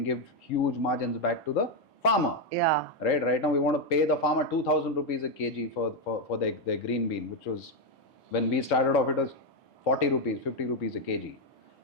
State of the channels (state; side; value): normal; both; correlation 0.04